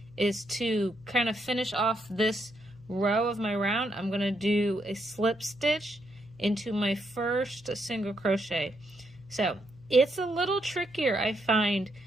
is to kind of finish off this row of my round, I'm going to do a slip stitch into my first single crochet. So it's a little trickier, I find,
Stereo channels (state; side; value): noise; right; hum, 28 dB below the sound